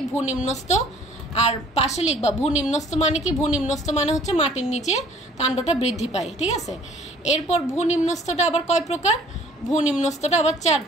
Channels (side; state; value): both; normal; correlation 0.55